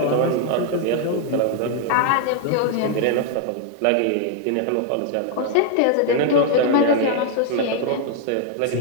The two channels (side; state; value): both; different; correlation 0.00